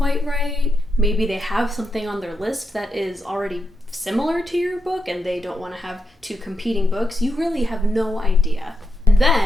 right. Maybe they have something on their list that is already similar to your book and they don't want to have two competing books. You really have no idea. And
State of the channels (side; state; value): both; normal; correlation 0.84